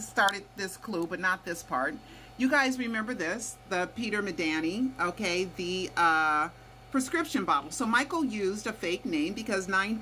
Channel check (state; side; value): identical; both; correlation 1.00